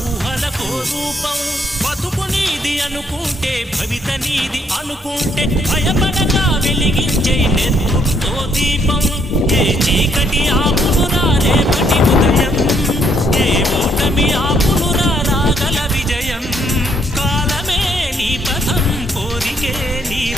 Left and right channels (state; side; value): normal; both; correlation 0.70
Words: ఊహలకో రూపం. బతుకు నీది అనుకుంటే భవిత నీది అనుకుంటే భయపడగా వెలిగించే నెత్తుతో దీపం. ఏ చీకటి ఆపునురా రేపటి ఉదయం, ఏ ఓటమి ఆపునురా రాగల విజయం. కాలమే నీ పథం, కోరికే నీ